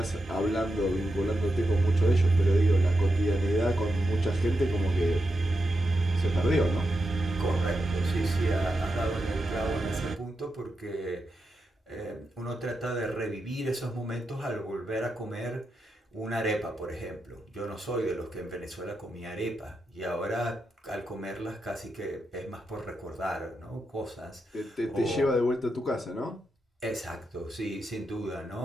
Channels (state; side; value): normal; both; correlation 0.87